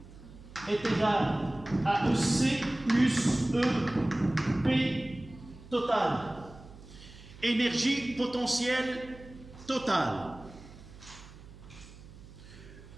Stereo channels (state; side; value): noise; right; hum, 18 dB below the sound